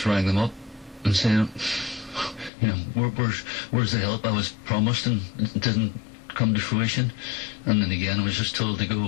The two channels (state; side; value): drops out; right; at 2.5 s